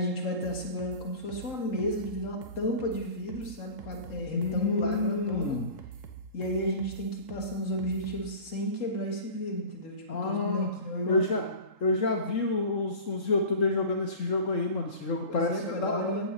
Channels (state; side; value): late; right; 3.8 ms